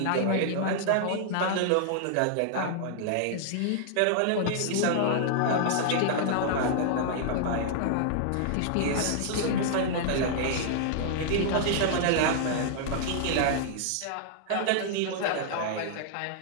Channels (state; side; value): different; both; correlation -0.01